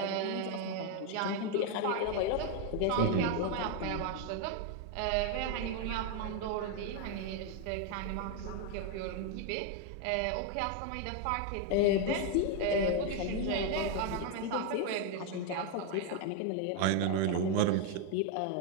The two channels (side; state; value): both; different; correlation 0.01